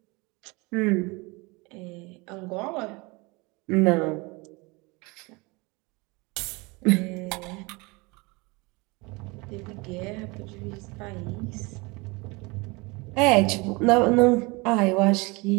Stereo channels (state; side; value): quieter; left; 26.1 dB